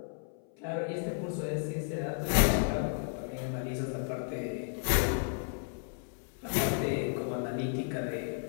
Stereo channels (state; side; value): silent; right; 56 dB below the other